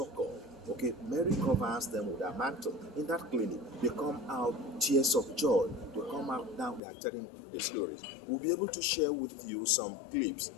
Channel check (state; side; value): drops out; right; at 6.8 s